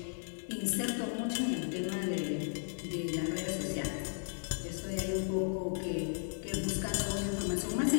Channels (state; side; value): silent; right; digital silence